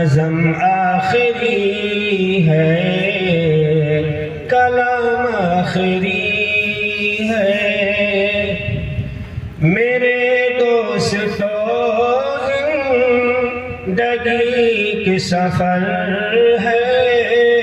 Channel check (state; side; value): identical; both; correlation 1.00